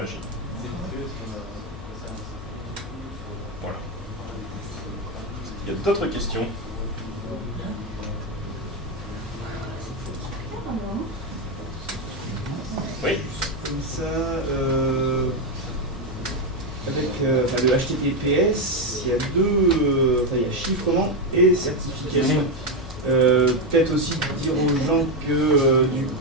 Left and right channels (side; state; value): both; normal; correlation 0.07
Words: Voilà. Il y a d'autres questions? Oui. Comme ça, avec le HTTPS, il y a il y a chiffrement et certification. Peut-être aussi dire aux gens que du